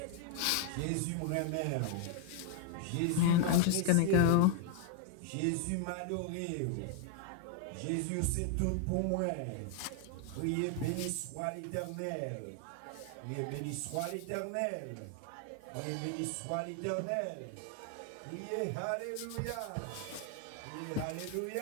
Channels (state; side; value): different; both; correlation 0.00